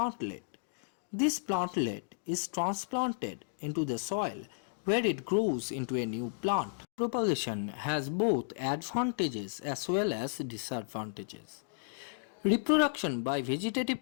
This plantlet is transplanted into the soil where it grows into a new plant. Propagation has both advantages as well as disadvantages. Reproduction by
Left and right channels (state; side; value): silent; right; digital silence